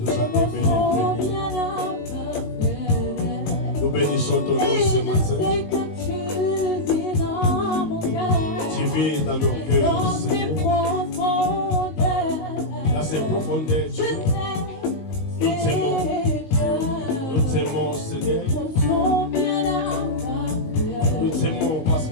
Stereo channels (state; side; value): late; right; 19 ms